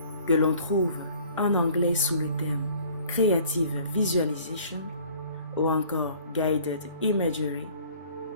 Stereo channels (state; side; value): inverted; both; correlation -0.52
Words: que l'on trouve en anglais sous le terme Creative Visualization ou encore Guided Imagery,